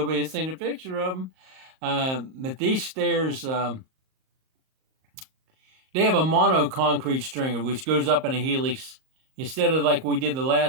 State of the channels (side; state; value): left; late; 38 ms